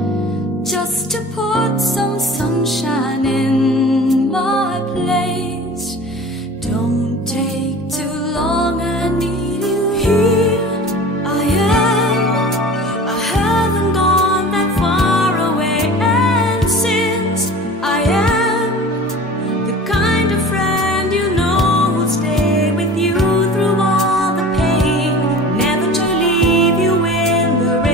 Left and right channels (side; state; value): both; normal; correlation 0.39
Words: just to put some sunshine in my place. Don't take too long, I need you here. I haven't gone that far away, and since I am the kind of friend you know will stay with you through all the pain, never to leave you in the